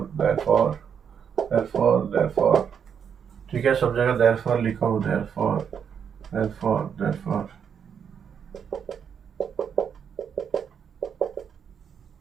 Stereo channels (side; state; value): left; quieter; 7.5 dB